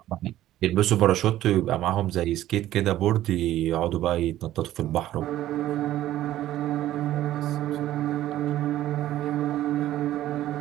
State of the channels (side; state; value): left; quieter; 13.7 dB